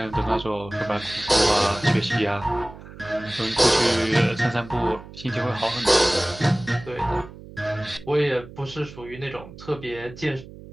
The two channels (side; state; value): right; noise; hum, 17 dB below the sound